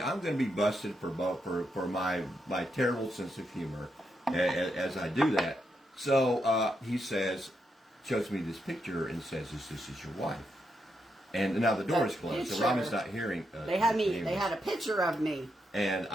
I'm going to be busted for my terrible sense of humor as I do that. So he shows me this picture and says, "This is your wife?" And now the door is closed, so Robin's not hearing. They had a picture of me. And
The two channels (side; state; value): both; normal; correlation 0.82